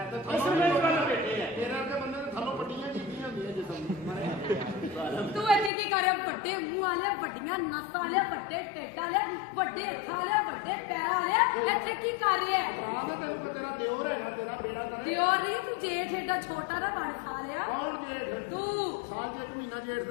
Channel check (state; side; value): drops out; right; at 5.7 s